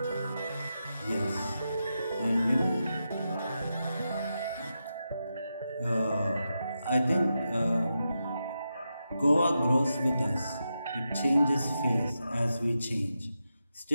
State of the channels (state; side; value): inverted; both; correlation -0.88